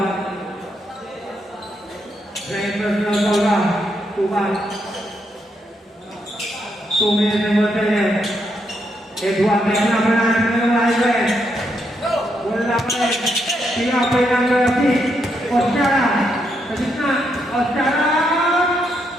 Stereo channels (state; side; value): normal; both; correlation 0.78